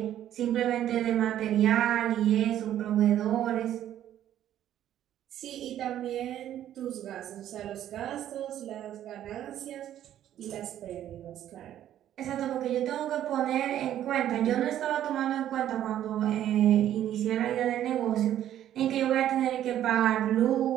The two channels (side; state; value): left; quieter; 11.6 dB